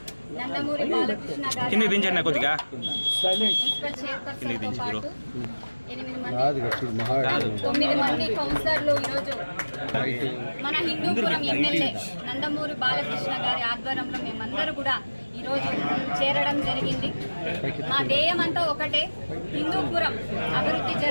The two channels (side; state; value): both; inverted; correlation -1.00